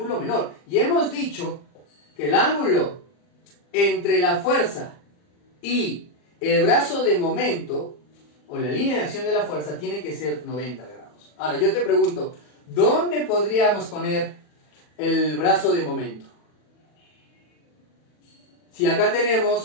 menor. Y hemos dicho que el ángulo entre la fuerza y el brazo de momento, o la línea de acción de la fuerza, tiene que ser 90 grados. Ahora, yo te pregunto, ¿dónde podríamos poner el brazo de momento? Si acá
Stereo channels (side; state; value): right; late; 40 ms